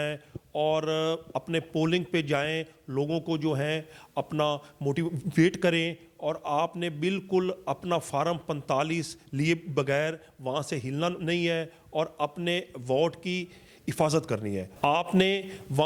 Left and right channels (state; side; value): identical; both; correlation 1.00